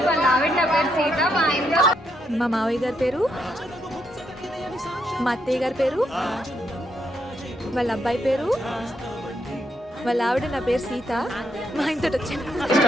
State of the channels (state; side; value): normal; both; correlation 0.78